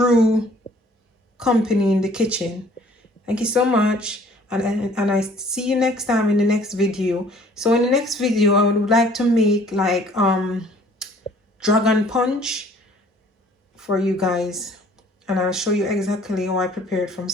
company in the kitchen. Thank you so much, and I see you next time in the next video. So in the next video I would like to make like dragon punch for you guys, and I'll show you exactly how I prepared from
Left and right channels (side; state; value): both; normal; correlation 0.55